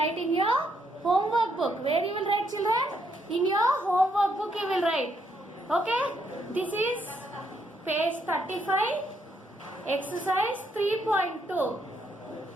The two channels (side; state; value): both; normal; correlation 0.74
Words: in your homework book. Where you will write children? In your homework book you will write. Okay? This is page 35, exercise 3.2.